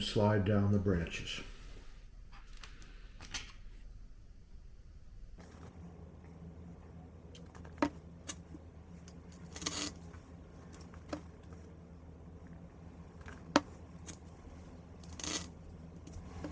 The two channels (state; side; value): identical; both; correlation 1.00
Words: slide down the branches.